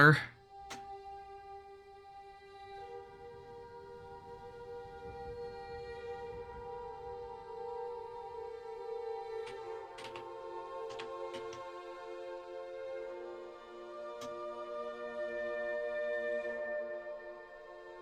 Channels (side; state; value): both; identical; correlation 1.00